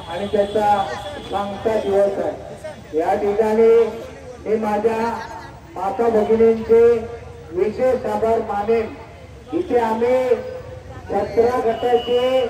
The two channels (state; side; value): identical; both; correlation 1.00